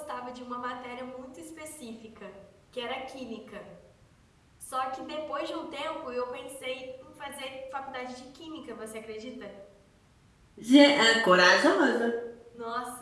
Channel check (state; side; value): identical; both; correlation 1.00